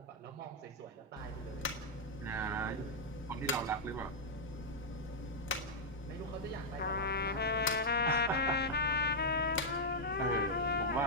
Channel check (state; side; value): normal; both; correlation -0.04